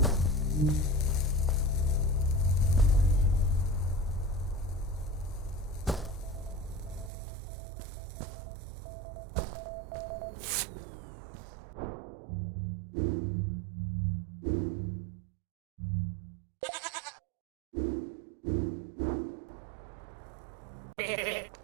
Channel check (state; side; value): drops out; left; at 7.1 s